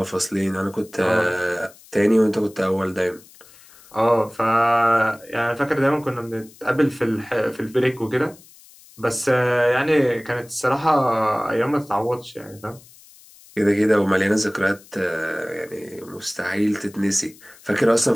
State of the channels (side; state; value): left; noise; hiss, 24 dB below the sound